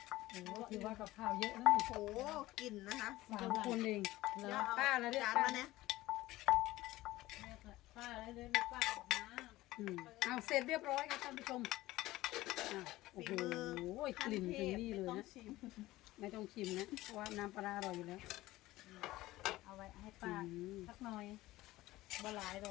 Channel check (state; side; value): quieter; right; 17.4 dB